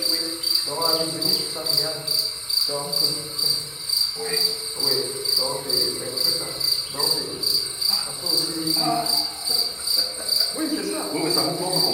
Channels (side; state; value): both; identical; correlation 1.00